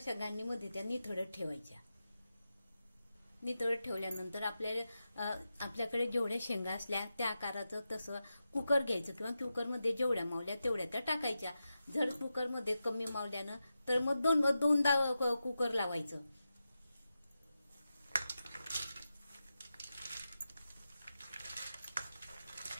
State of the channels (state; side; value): inverted; both; correlation -0.90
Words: गांडीमध्ये त्या निथळत ठेवायच्या. निथळत ठेवल्यानंतर आपल्याकडे जेवढ्या शेंगा असल्या त्या आकाराचं तसं कुकर घ्यायचं किंवा कुकरमध्ये जेवढ्या मावल्या तेवढ्या त्या टाकायच्या. जर कुकरमध्ये कमी मावल्यानं तर मग दोनदा कुकर लावायचं.